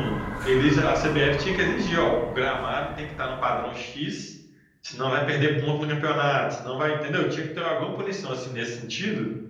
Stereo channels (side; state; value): both; identical; correlation 1.00